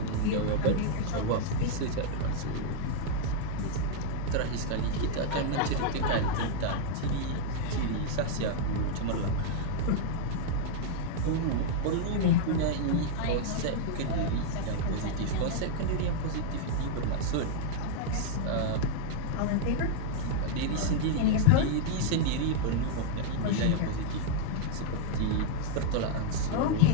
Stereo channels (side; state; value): both; different; correlation -0.01